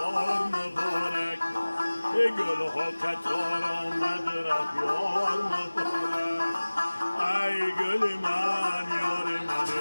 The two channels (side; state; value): both; inverted; correlation -1.00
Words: مبارک گل ها کتار آمد رفت یار مبارک ای گل من